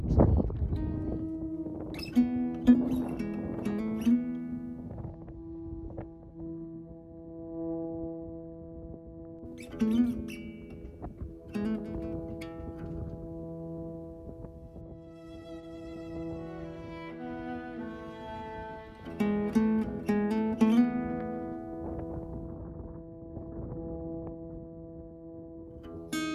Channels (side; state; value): both; identical; correlation 1.00